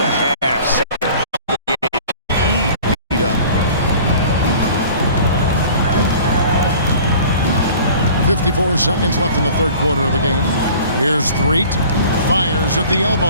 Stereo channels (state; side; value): inverted; both; correlation -0.46